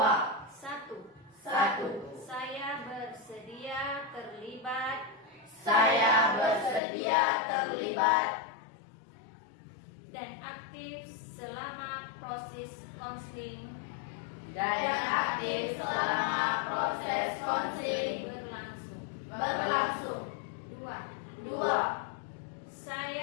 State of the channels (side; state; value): right; drops out; at 6.8 s